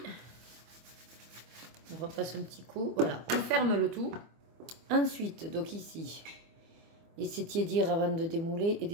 on repasse un petit coup. Voilà, on ferme le tout. Ensuite, donc ici, laissez tiédir avant de démouler et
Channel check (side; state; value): left; late; 24 ms